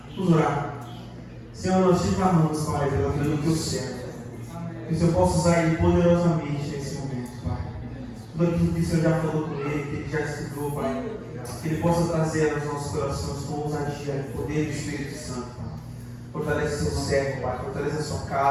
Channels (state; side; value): identical; both; correlation 1.00